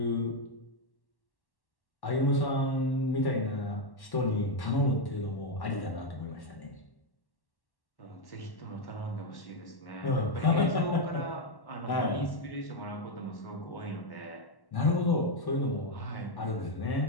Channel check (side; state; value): right; late; 1.1 ms